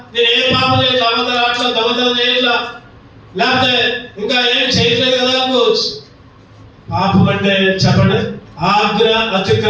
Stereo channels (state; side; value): identical; both; correlation 1.00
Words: నేనేం పాపం చేయట్లా, అబద్ధాలు అట్లా దొంగతనం చేయట్లా, లేకపోతే ఇంకా ఏం చేయట్లేదు కదా అనుకోవచ్చు. పాపం అంటే చెప్పండి, ఆజ్ఞ